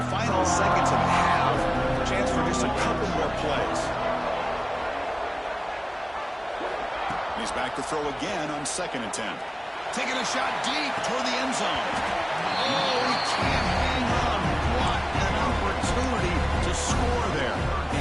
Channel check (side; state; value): both; identical; correlation 1.00